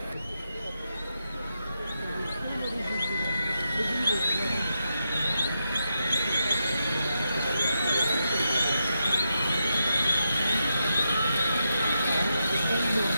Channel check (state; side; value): inverted; both; correlation -0.85